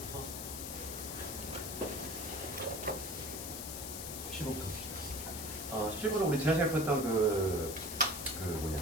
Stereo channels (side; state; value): left; noise; hiss, 6 dB below the sound